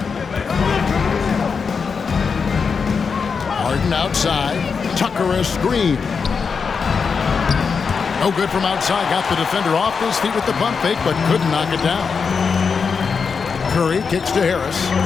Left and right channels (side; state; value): right; quieter; 5.6 dB